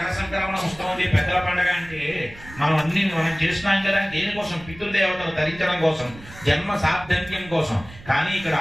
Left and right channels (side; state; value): right; noise; rumble, 18 dB below the sound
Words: సంక్రమణ ఉత్సవం పెద్దల పండుగ అంటే మనం చేస్తున్నాం కదా, దేనికోసం? పితృదేవతలు తరించడం కోసం, జన్మ సార్థక్యం కోసం. కానీ ఇక్కడ